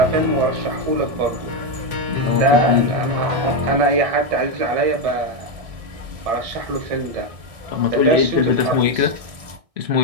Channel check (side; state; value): left; late; 1.6 ms